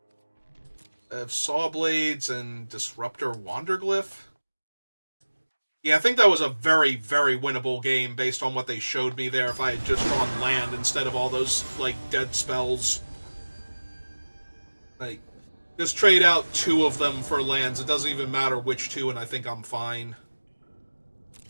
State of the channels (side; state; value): both; inverted; correlation -1.00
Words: I have Sawblades and Disruptor Wanderglyph. Yeah, I think that was a very, very winnable game based on what they showed me there if I had just drawn land instead of all those, like, dead spells. Like, just trade out 2 of them for lands. It doesn't even matter which 2, and I think I'm fine.